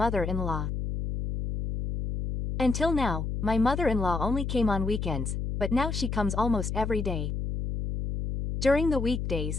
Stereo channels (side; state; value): left; noise; hum, 3 dB below the sound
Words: Until now, my mother-in-law only came on weekends, but now she comes almost every day. During the